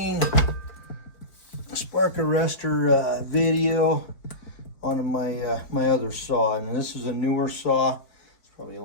spark arrestor video on my other saw, and this is a newer saw. It's probably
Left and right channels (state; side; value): late; right; 4.6 ms